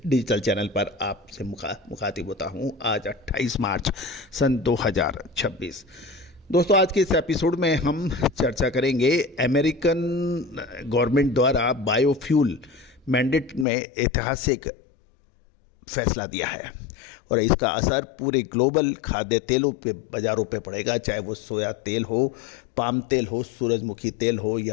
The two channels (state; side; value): drops out; right; at 13.7 s